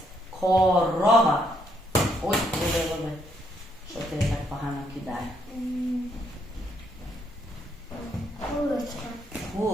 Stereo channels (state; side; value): normal; both; correlation 0.73